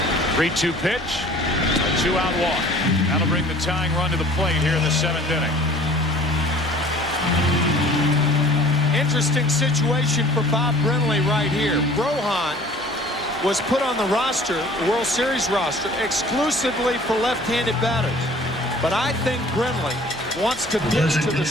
3-2 pitch, a 2-out walk. That'll bring the tying run to the plate here in the 7th inning. Interesting situation for Bob Brenly right here. Rohan was put on the roster, the World Series roster, exclusively for left-handed batters. But I think Brenly wants to pitch to the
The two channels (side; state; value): both; normal; correlation 0.49